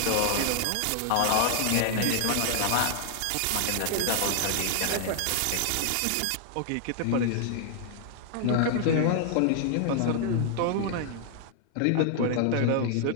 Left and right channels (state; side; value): different; both; correlation 0.00